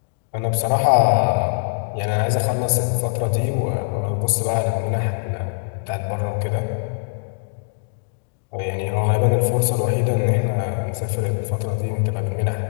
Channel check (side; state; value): right; silent; digital silence